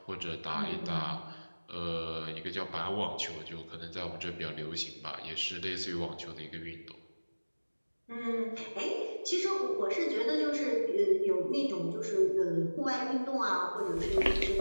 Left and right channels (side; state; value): both; inverted; correlation -1.00